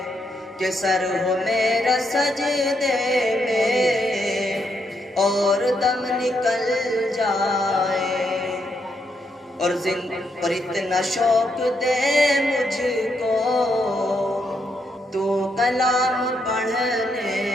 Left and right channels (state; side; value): normal; both; correlation 0.78